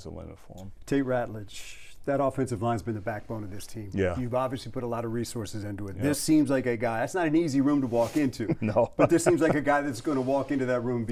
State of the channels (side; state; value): both; identical; correlation 1.00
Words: the limit for him. Tate Ratledge, that offensive line's been the backbone of this team. Yeah. You've obviously put a lot of resources into it. Yep. This seems like a guy, that's not an easy room to walk into. No. But this seems like a guy that's going to walk into that room and